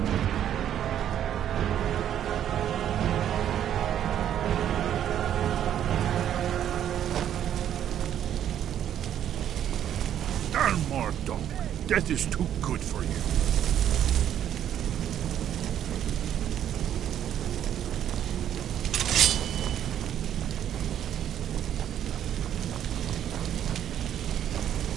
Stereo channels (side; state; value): left; quieter; 10.3 dB